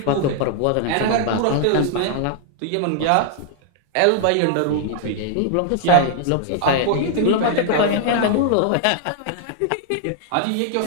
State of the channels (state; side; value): different; both; correlation 0.00